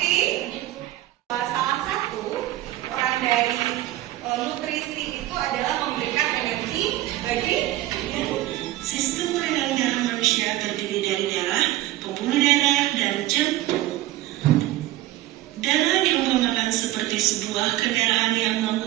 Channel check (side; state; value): left; quieter; 15.5 dB